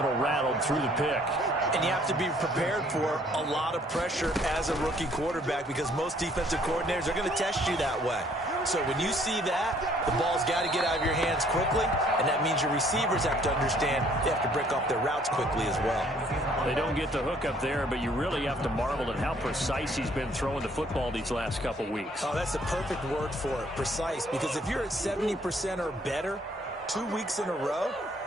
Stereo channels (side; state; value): both; normal; correlation 0.62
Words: rattled through the pick. And you have to be prepared for a lot of pressure as a rookie quarterback because most defensive coordinators are going to test you that way. So when you see that, the ball's got to get out of your hands quickly, and that means your receivers have to understand they have to break off their routes quickly as well. They don't get the hook up there, but you really have to marvel at how precise he's been throwing the football these last couple weeks. Oh, that's the perfect word for it, precise, because if you're at 70% or better 2 weeks in a row,